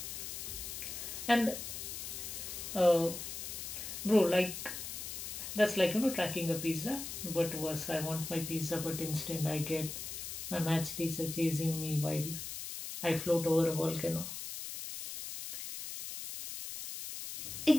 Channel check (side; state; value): left; noise; hiss, 7 dB below the sound